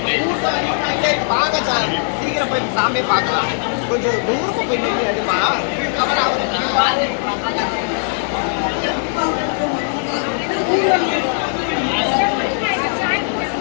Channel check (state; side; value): silent; right; 67 dB below the other